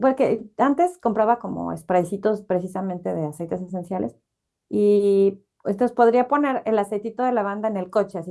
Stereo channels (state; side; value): identical; both; correlation 1.00